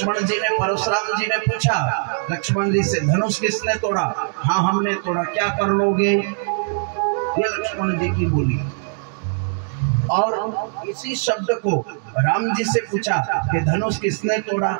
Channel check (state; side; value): silent; left; digital silence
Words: जी ने, परशुराम जी ने पूछा लक्ष्मण जी से, धनुष किसने तोड़ा? हाँ हमने तोड़ा, क्या कर लोगे? ये लक्ष्मण जी की बोली। और इसी शब्द को राम जी से पूछा कि धनुष किसने तोड़ा?